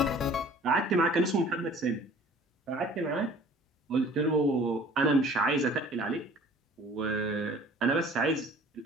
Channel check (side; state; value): both; normal; correlation 0.50